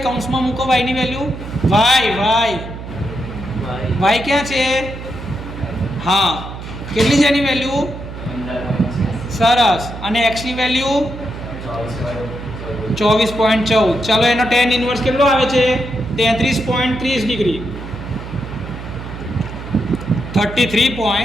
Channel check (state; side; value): noise; right; hum, 10 dB below the sound